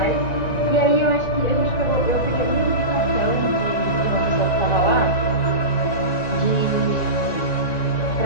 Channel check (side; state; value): right; late; 1.9 ms